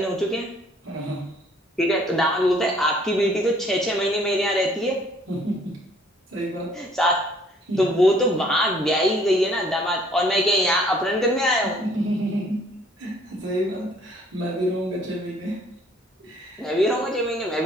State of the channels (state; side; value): normal; both; correlation 0.60